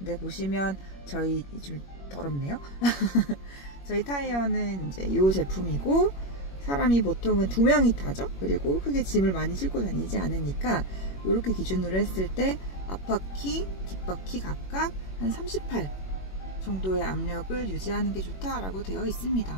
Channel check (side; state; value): right; late; 21 ms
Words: 보시면 저희 좀 더럽네요. 저희 타이어는 이제 이 제품이고, 사람이 보통은 2명이 타죠. 그리고 크게 짐을 많이 싣고 다니지 않으니까 이렇게 기준으로 했을 때 앞바퀴, 뒷바퀴 각각 한 38 정도의 압력을 유지하는 게 좋다라고 되어 있습니다.